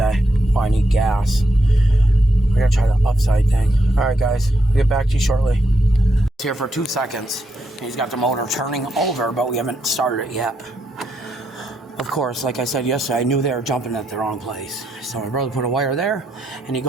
Oh, I need gas. We're gonna try the upside thing. Alright, guys. I'll get back to you shortly. It's here for 2 seconds. He's got the motor turning over, but we haven't started it yet. Of course, like I said yesterday, I knew they were jumping at the wrong place. So my brother put a wire there, and he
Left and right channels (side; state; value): both; normal; correlation 0.80